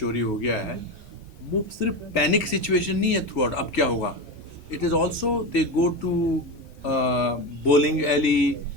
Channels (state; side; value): normal; both; correlation 0.20